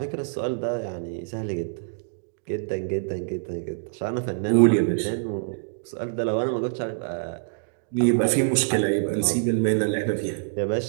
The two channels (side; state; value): left; silent; digital silence